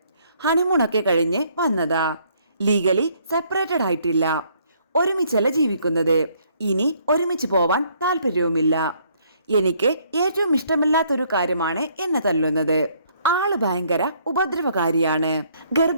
ഹണിമൂണൊക്കെ കഴിഞ്ഞ് വന്നതാ. ലീഗലി സെപ്പറേറ്റഡ് ആയിട്ടില്ല. ഒരുമിച്ചല്ല ജീവിക്കുന്നത്. ഇനി ഒരുമിച്ച് പോവാൻ താല്പര്യവുമില്ല. എനിക്ക് ഏറ്റവും ഇഷ്ടമില്ലാത്തൊരു കാര്യമാണ് എന്നെ തല്ലുന്നത്. ആള് ഭയങ്കര ഉപദ്രവകാരിയാണ്.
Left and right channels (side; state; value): both; inverted; correlation -0.66